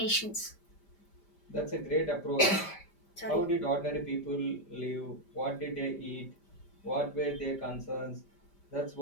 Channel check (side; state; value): right; late; 5.1 ms